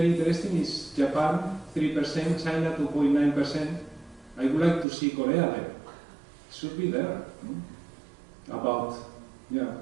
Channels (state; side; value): drops out; left; at 4.9 s